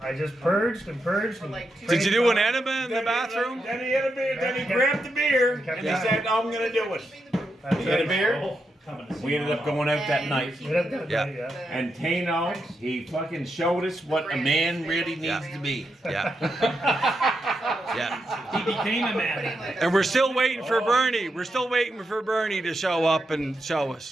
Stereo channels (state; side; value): normal; both; correlation 0.84